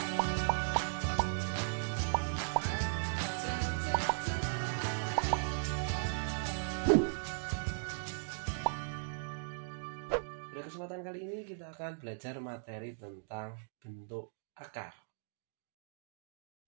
Pada kesempatan kali ini kita akan belajar materi tentang bentuk akar.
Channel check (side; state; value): left; silent; digital silence